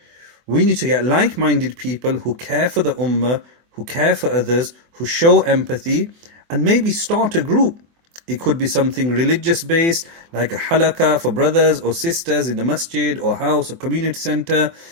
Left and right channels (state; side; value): late; left; 24 ms